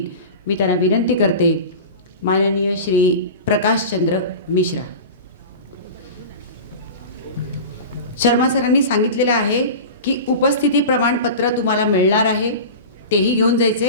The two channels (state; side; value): inverted; both; correlation -0.31